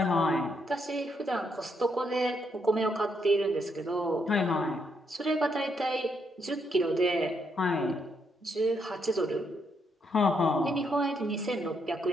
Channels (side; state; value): both; normal; correlation 0.76